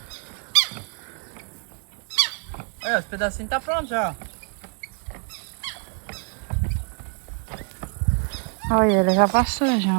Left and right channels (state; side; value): quieter; left; 38.9 dB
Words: Aí, os pedacinhos tá pronto já. Olha, ele já passou já